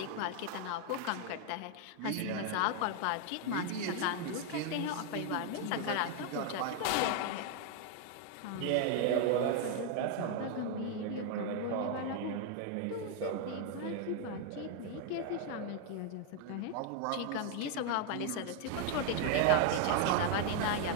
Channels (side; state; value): both; different; correlation 0.00